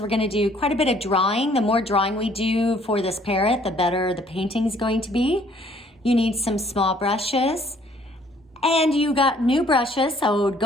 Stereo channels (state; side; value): normal; both; correlation 0.61